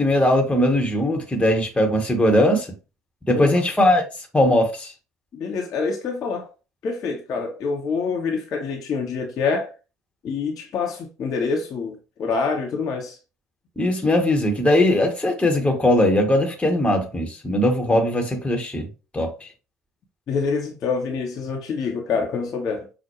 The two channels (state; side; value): normal; both; correlation 0.68